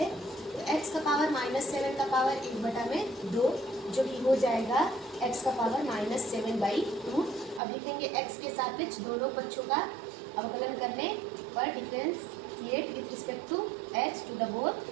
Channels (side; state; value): left; drops out; at 7.6 s